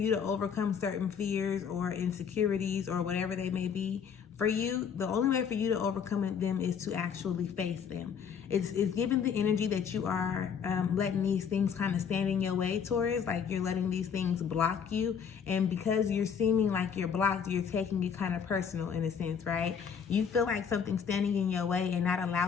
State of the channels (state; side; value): quieter; right; 7.1 dB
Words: to overcome certain fears or insecurities or whatever they may be for you, the only way for you to overcome them is to actually face them. It's given the energy that you are letting these things kind of stand in your way, Taurus, like you're letting these things block you. And because you're seeming like you're blocked, you're taking it kind of personal in a sense, right? You feel like something's standing in your way and not